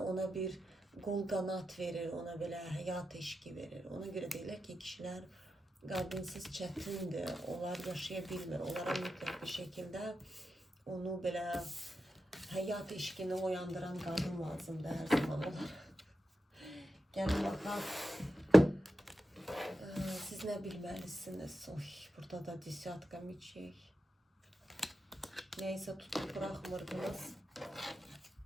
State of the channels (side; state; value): both; normal; correlation 0.90